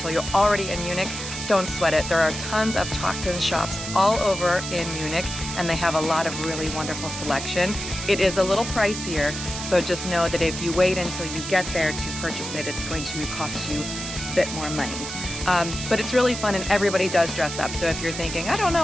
you're already in Munich, don't sweat it. There are tons of Trachten shops all over in Munich, and they have a lot of really wonderful selection. It is a little pricier, so just know that if you wait until you get there to purchase it, it's going to cost you a bit more money. But it's really fun, and everybody does dress up. So if you're thinking, I don't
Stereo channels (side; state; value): right; noise; hiss, 7 dB below the sound